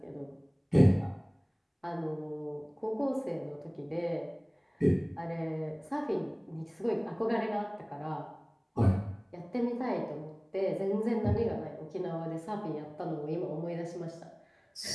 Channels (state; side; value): identical; both; correlation 1.00